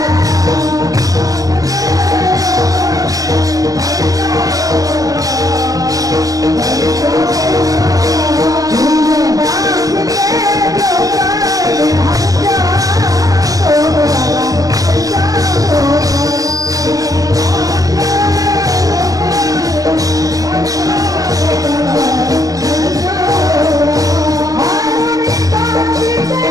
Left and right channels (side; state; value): left; late; 0.17 ms